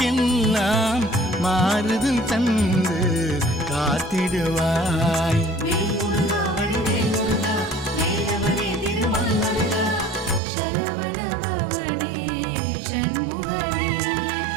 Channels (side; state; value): left; drops out; at 10.4 s